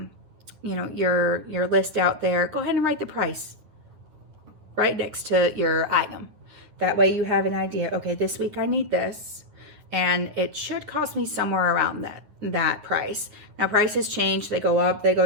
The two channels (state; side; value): late; left; 9.7 ms